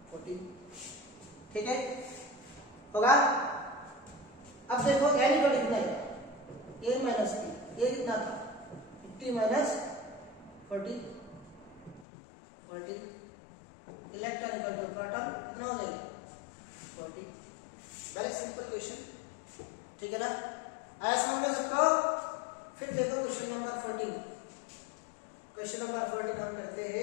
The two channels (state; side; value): drops out; right; at 12.1 s